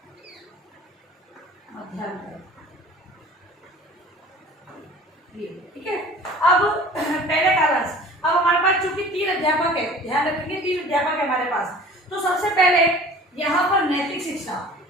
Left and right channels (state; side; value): normal; both; correlation 0.44